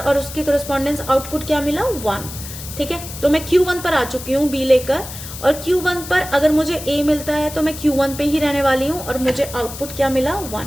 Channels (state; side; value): noise; left; hiss, 12 dB below the sound